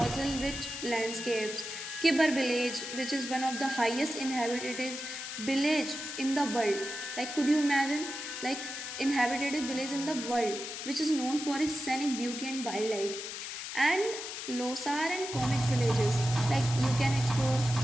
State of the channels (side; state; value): left; noise; hiss, 7 dB below the sound